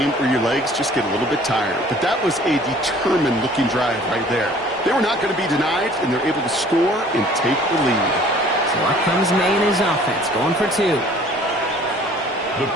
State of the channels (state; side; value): normal; both; correlation 0.52